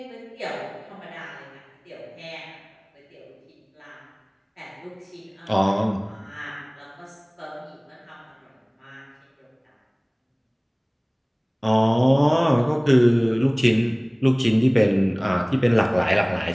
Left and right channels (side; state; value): both; identical; correlation 1.00